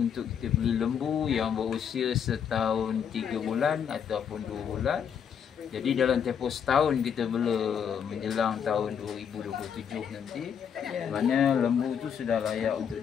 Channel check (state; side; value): quieter; right; 7.8 dB